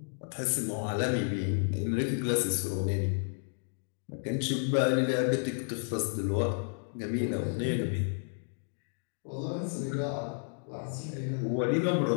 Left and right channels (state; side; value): silent; right; digital silence